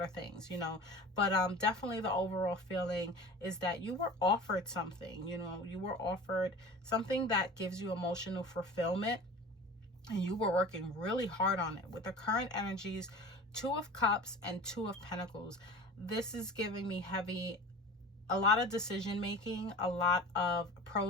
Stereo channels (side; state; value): both; normal; correlation 0.38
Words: of things, you know. But definitely the overall feeling is that you were offered something, you know, you were offered something that gives you emotional fulfillment, and you were working really hard on it. With the current energies, 2 of Cups and 2 of Pentacles, this is giving me a lot of decision making, a lot of